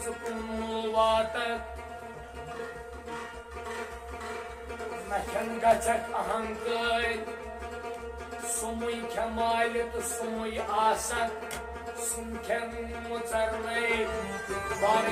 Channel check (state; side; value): identical; both; correlation 1.00